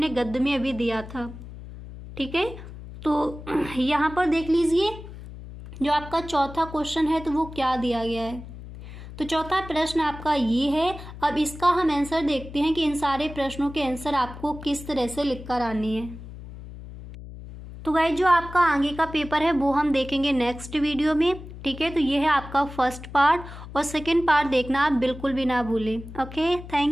गद्य में अभी दिया था। ठीक है, तो यहाँ पर देख लीजिए जो आपका चौथा क्वेश्चन है तो वो क्या दिया गया है। तो चौथा प्रश्न आपका ये है। अब इसका हम आंसर देखते हैं कि इन सारे प्रश्नों के आंसर आपको किस तरह से लिख कर आने हैं। तो गाइस जो आपका आगे का पेपर है वो हम देखेंगे नेक्स्ट वीडियो में। ठीक है, तो ये है आपका फर्स्ट पार्ट और सेकंड पार्ट देखना आप बिल्कुल भी ना भूलें। Okay,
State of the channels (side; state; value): left; noise; hum, 13 dB below the sound